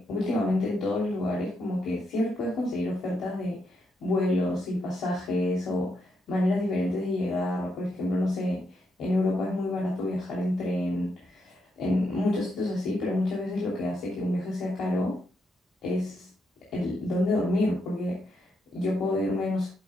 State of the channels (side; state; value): both; normal; correlation 0.80